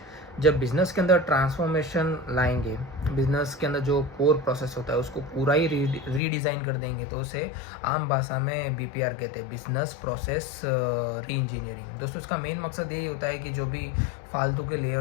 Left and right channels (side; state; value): right; drops out; at 6.2 s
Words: जब बिज़नेस के अंदर ट्रांसफॉर्मेशन लाएंगे, बिज़नेस के अंदर जो कोर प्रोसेस होता है उसको पूरा ही रीडिज़ाइन कर देंगे, तो उसे आम भाषा में BPR कहते हैं, बिज़नेस प्रोसेस री इंजीनियरिंग। दोस्तों, इसका मेन मकसद यही होता है कि जो भी फालतू के